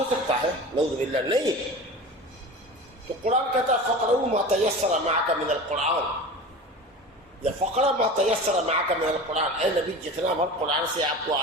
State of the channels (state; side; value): normal; both; correlation 0.33